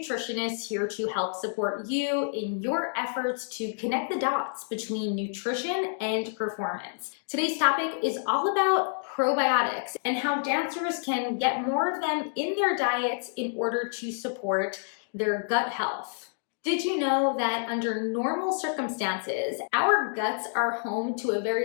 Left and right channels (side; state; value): right; silent; digital silence